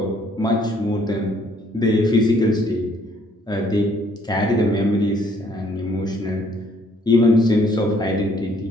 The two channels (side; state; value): both; normal; correlation 0.64